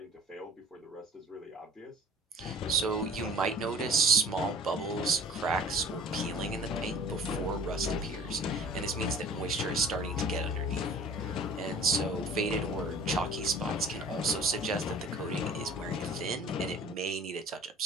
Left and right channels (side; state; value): both; normal; correlation 0.46